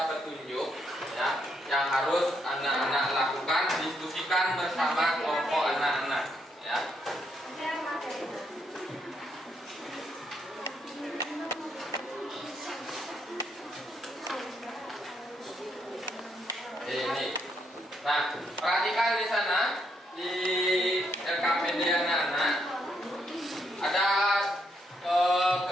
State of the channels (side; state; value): both; normal; correlation 0.76